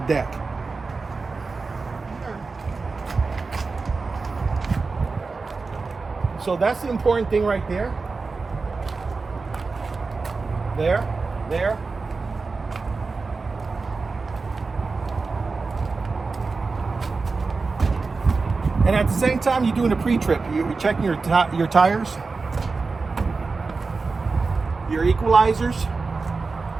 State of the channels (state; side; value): quieter; left; 4.2 dB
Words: deck. So that's the important thing right there. There. And at the same time, you're doing a pre-trip. You're checking your tires, your equalizers,